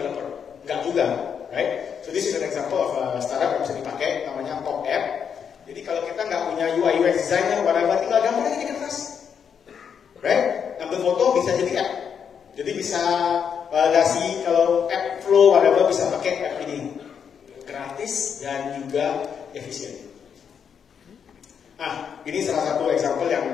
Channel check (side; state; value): right; quieter; 7.3 dB